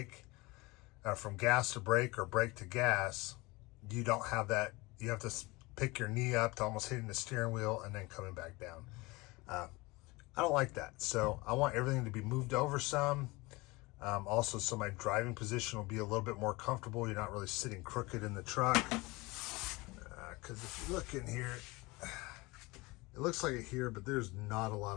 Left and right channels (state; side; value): quieter; right; 23.3 dB